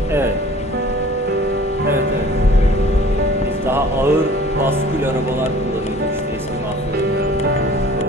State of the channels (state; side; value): normal; both; correlation 0.48